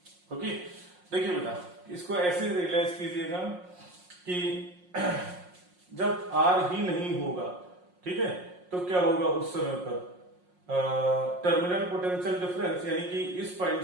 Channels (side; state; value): left; late; 5.6 ms